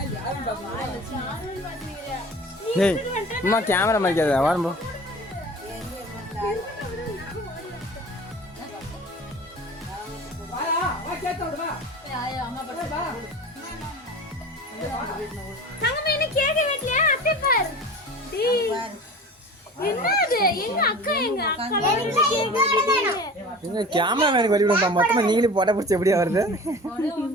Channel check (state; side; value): normal; both; correlation 0.39